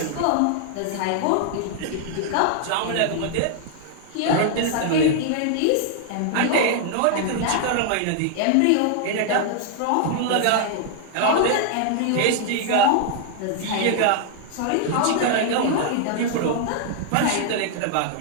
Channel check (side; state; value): both; different; correlation 0.00